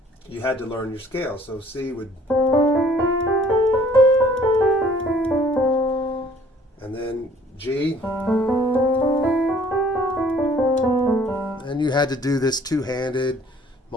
you had to learn your scale. So C would... and then G, and you had to do this two-handed,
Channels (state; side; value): normal; both; correlation 0.56